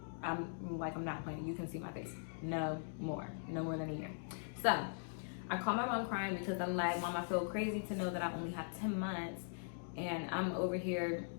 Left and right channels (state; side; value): silent; right; digital silence